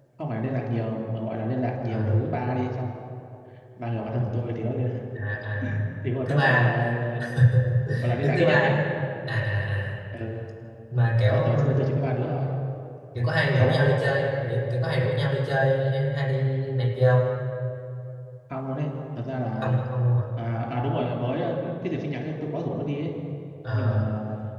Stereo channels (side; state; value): both; identical; correlation 1.00